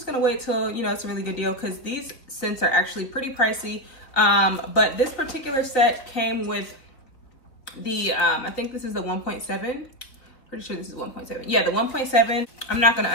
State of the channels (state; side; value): late; right; 3.9 ms